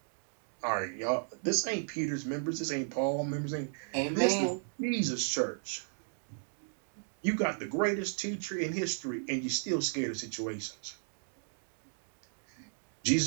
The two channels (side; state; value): left; silent; digital silence